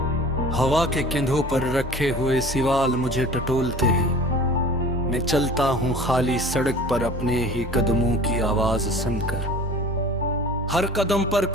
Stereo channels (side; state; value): both; normal; correlation 0.43